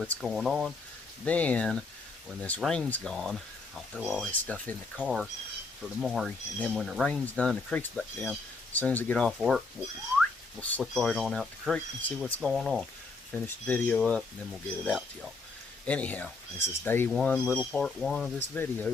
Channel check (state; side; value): quieter; right; 3.9 dB